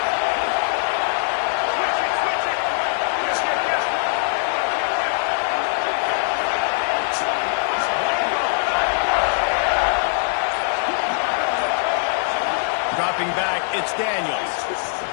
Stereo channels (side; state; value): right; silent; digital silence